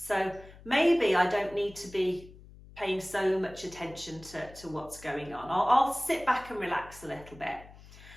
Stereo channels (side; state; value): left; noise; hum, 20 dB below the sound